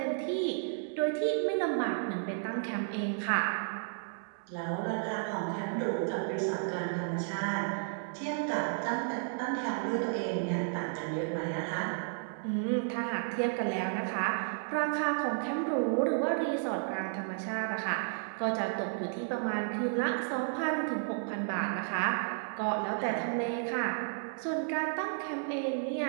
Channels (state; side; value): silent; left; digital silence